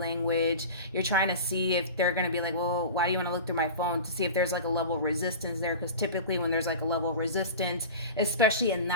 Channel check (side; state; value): both; inverted; correlation -0.32